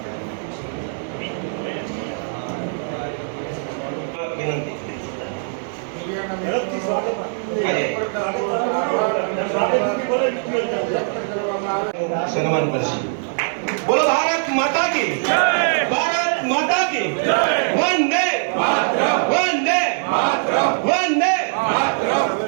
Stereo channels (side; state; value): left; silent; 62 dB below the other